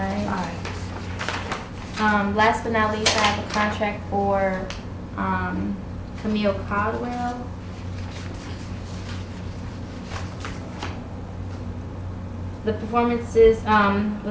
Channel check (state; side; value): identical; both; correlation 1.00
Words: Aye. Last but not least, I have a contract for Camille Codwell. The performances,